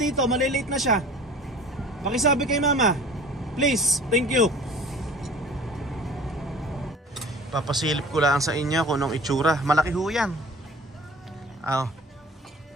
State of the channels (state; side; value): normal; both; correlation 0.44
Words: malilate na siya. Pakisabi kay mama, please, thank you. Papasilip ko lang sa inyo kung anong itsura. Malaki ho yan.